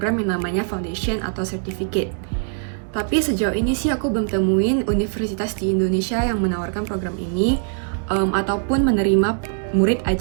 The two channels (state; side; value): silent; left; 64 dB below the other